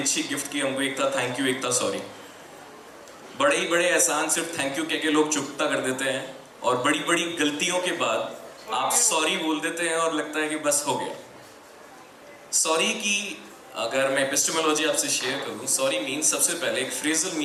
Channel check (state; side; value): identical; both; correlation 1.00